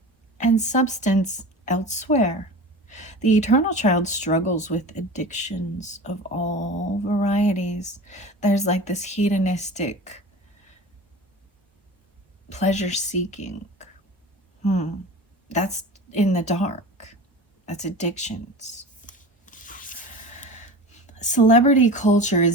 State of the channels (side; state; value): both; normal; correlation 0.34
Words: and substance elsewhere. The Eternal Child struggles with addictions of all varieties. There's like this hedonistic pleasure seeking. That's in the dark. That's addictions. Celebrity culture